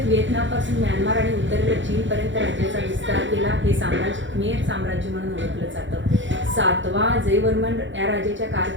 व्हिएतनामपासून म्यानमार आणि उत्तरेला चीनपर्यंत राज्याचा विस्तार केला. हे साम्राज्य खमेर साम्राज्य म्हणून ओळखलं जातं. 7वा जयवर्मन या राजाच्या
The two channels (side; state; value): left; late; 0.54 ms